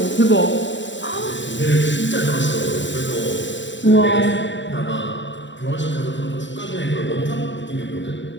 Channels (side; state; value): right; late; 0.54 ms